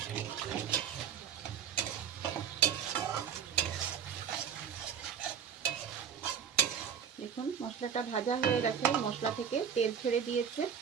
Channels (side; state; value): left; quieter; 7.8 dB